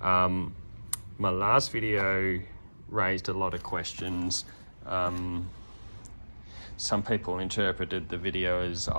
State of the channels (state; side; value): inverted; both; correlation -1.00